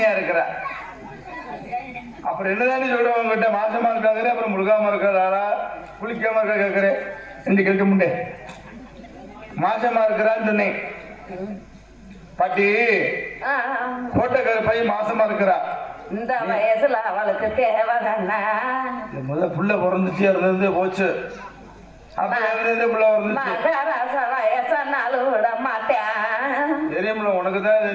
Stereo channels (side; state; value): both; identical; correlation 1.00